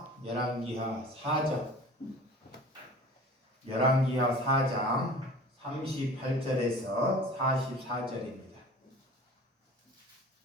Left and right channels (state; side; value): normal; both; correlation 0.42